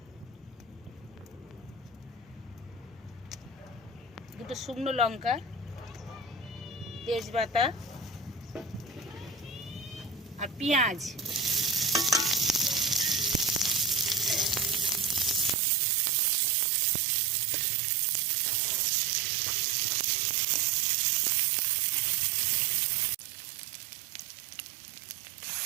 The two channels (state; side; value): drops out; left; at 15.6 s